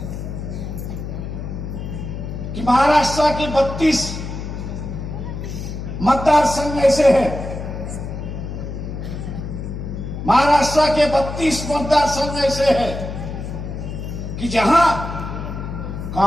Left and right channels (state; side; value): noise; left; hum, 7 dB below the sound